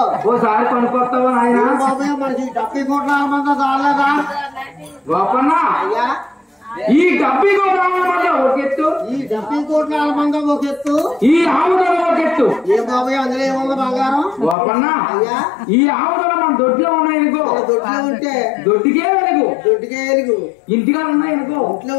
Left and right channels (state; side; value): drops out; right; at 14.6 s